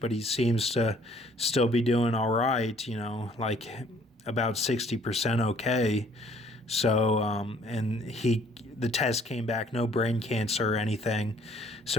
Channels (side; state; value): both; normal; correlation 0.60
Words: but he seems to still be doing all right, like about 60% okay. So, and the test came back, no brain cancer or anything.